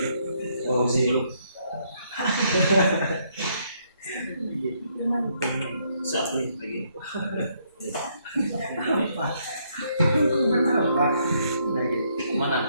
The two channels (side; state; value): both; inverted; correlation -0.72